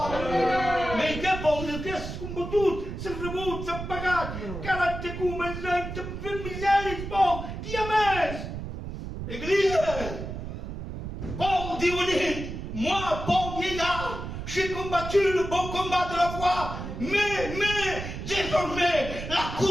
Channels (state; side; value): noise; right; rumble, 7 dB below the sound